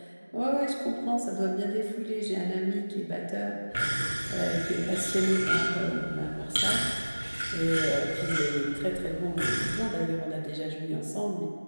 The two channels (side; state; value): both; inverted; correlation -1.00